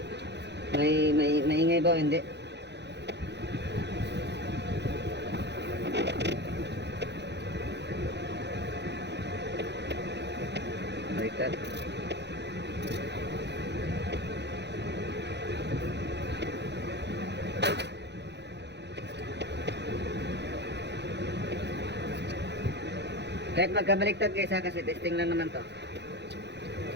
maingay ba o hindi. Baliktad. Kahit magkabaliktad guys ha, kasi testing lang naman to.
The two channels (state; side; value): late; left; 0.50 ms